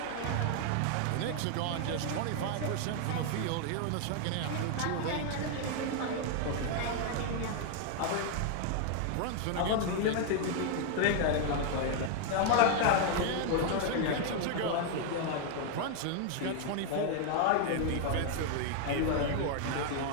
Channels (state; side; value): different; both; correlation 0.00